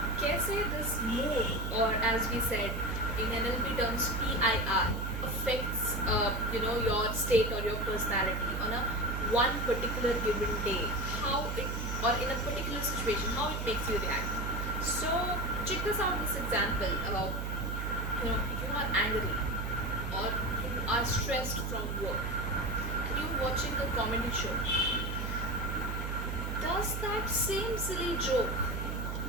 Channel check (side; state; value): right; noise; hum, 3 dB below the sound